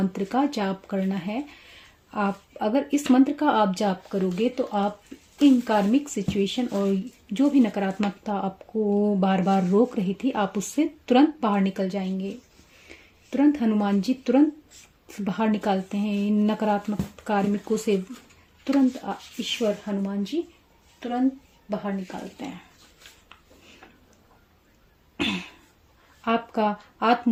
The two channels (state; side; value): identical; both; correlation 1.00